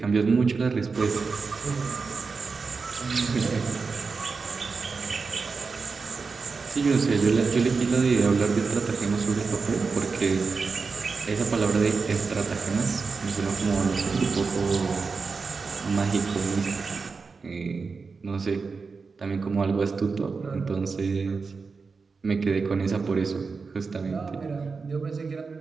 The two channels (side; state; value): left; quieter; 4.7 dB